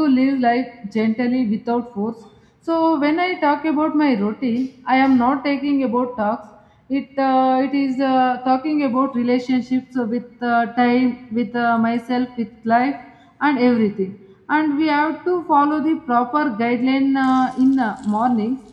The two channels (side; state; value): both; identical; correlation 1.00